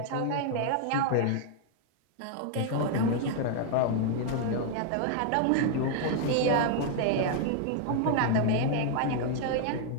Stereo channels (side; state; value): both; different; correlation 0.00